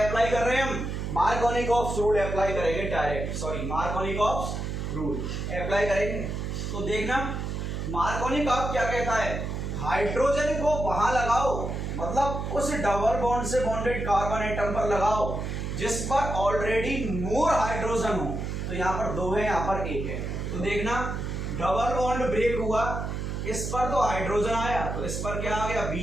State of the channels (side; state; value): right; noise; hum, 4 dB below the sound